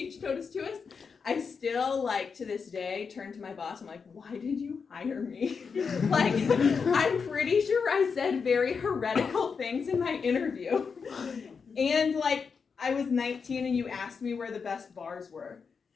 Totus, I still, to this day, turn to my boss. I'm like, why did you hire me? I'm pretty sure I said very heretical things in my interview. And, I was 19 and you asked me where the best bars were.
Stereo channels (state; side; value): quieter; right; 5.6 dB